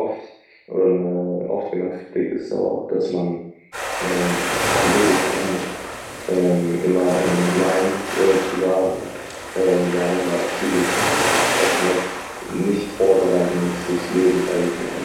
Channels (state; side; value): identical; both; correlation 1.00